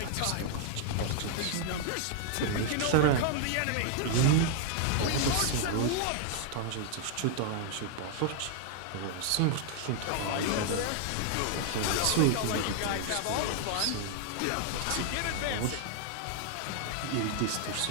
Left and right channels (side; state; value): both; different; correlation 0.00